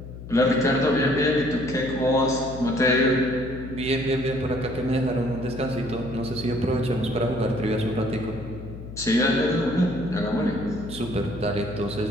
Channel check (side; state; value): left; noise; hum, 12 dB below the sound